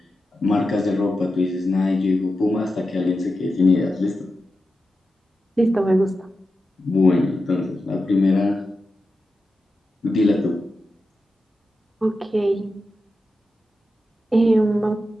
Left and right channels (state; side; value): normal; both; correlation 0.90